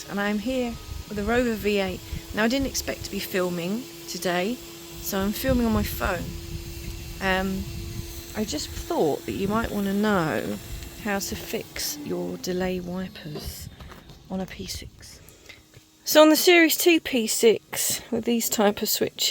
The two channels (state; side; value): identical; both; correlation 1.00